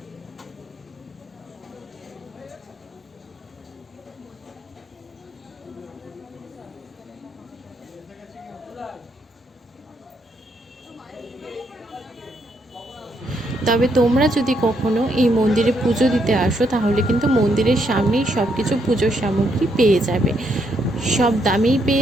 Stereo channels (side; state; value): both; normal; correlation 0.75